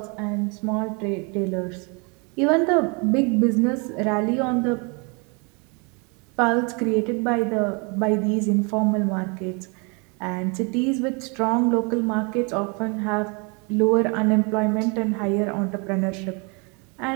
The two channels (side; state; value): left; quieter; 32.4 dB